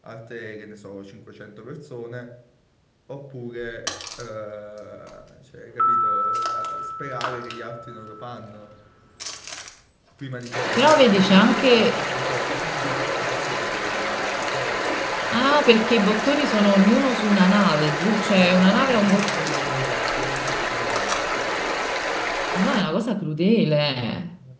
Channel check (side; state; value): both; identical; correlation 1.00